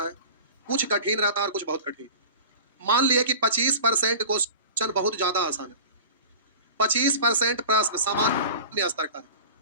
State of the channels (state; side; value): inverted; both; correlation -0.36